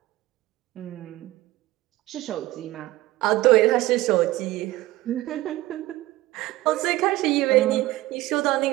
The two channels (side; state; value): left; quieter; 17.6 dB